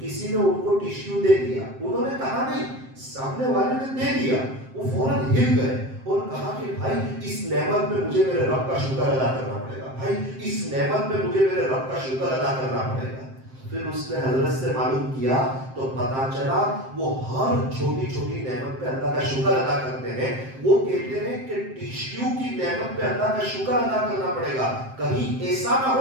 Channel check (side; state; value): left; late; 7.6 ms